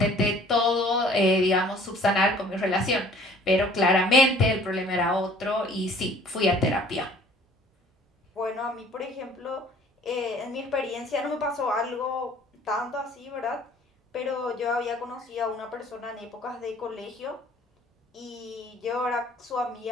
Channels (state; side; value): normal; both; correlation 0.53